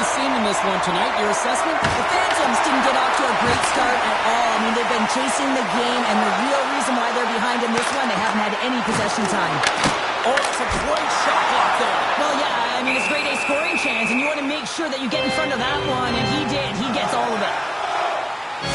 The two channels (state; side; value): identical; both; correlation 1.00